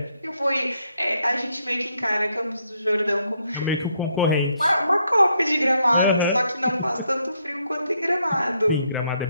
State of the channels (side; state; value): both; inverted; correlation -0.75